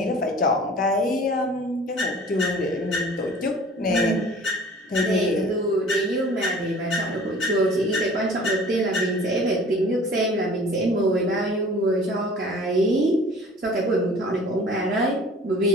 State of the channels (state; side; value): normal; both; correlation 0.47